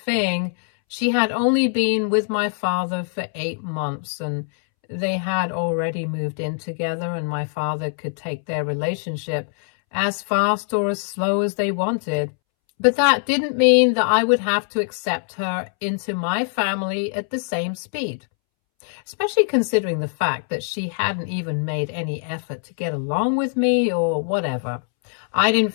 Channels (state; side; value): silent; right; 64 dB below the other